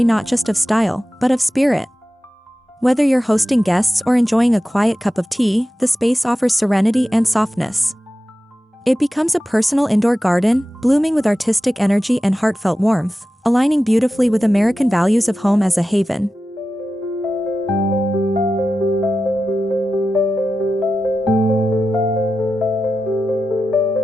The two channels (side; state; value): both; normal; correlation 0.93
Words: not just of style, but of spirit. Whether you're hosting guests or enjoying a quiet cup of tea, the space offers serenity and softness. It becomes a personal indoor garden, blooming with artistic energy and heartfelt warmth, aligning beautifully with American values of home as a haven.